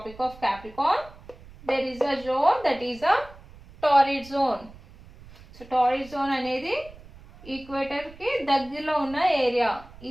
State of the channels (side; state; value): right; noise; rumble, 21 dB below the sound